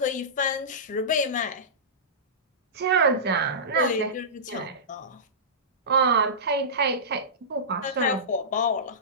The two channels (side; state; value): both; normal; correlation -0.20